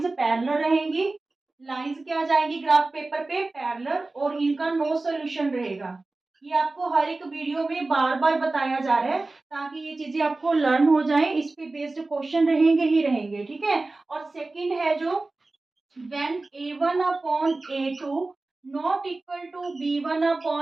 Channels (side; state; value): left; quieter; 3.2 dB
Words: पैरेलल रहेंगी, लाइंस क्या आ जाएंगी ग्राफ पेपर पे पैरेलल और इनका नो सोल्यूशन रहेगा। ये आपको हर एक वीडियो में बार बार बताया जा रहा है ताकि ये चीजें आपको लर्न हो जाए, इस पे बेस्ड क्वेश्चन रहेंगे ही रहेंगे, ठीक है। और सेकंड है जो when a1 upon a2 not equal to b1